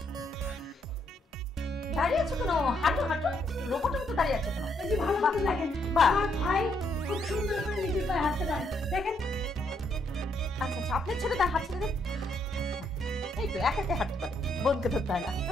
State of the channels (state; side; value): normal; both; correlation 0.74